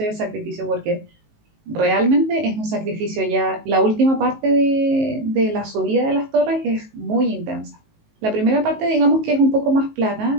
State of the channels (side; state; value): left; late; 19 ms